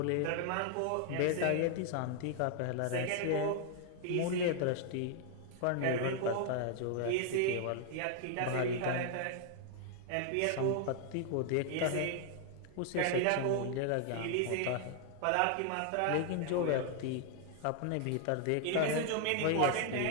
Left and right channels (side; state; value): both; different; correlation 0.00